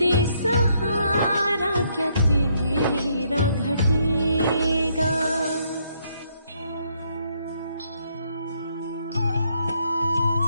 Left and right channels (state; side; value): inverted; both; correlation -0.72